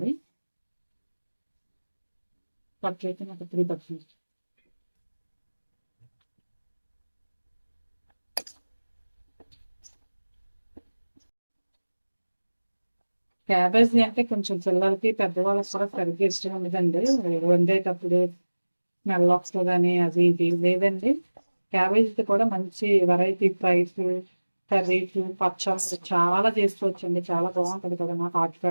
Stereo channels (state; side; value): inverted; both; correlation -1.00